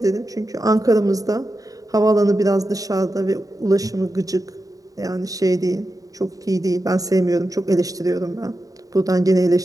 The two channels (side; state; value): left; late; 0.17 ms